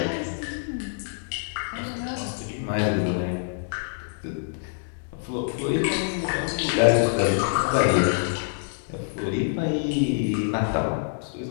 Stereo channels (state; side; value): silent; right; digital silence